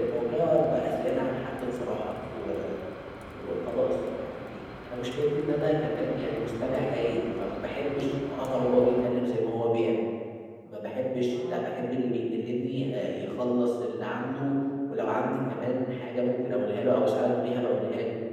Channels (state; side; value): identical; both; correlation 1.00